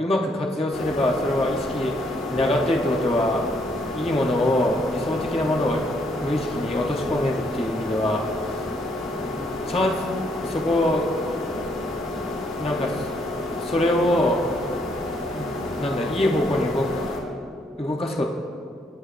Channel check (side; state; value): both; normal; correlation 0.71